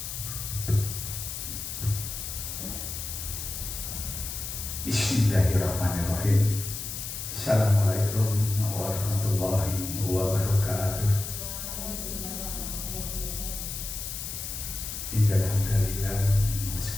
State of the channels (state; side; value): noise; left; hiss, 6 dB below the sound